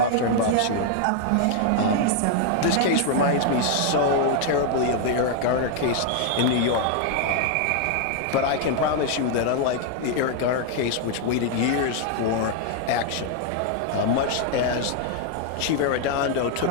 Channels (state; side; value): different; both; correlation 0.00